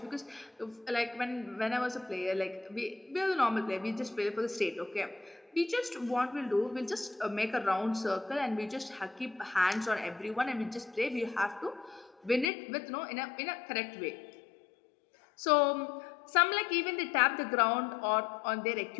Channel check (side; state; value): right; drops out; at 12.5 s